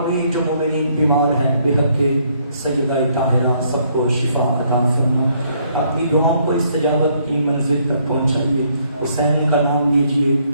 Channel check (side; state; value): both; inverted; correlation -0.69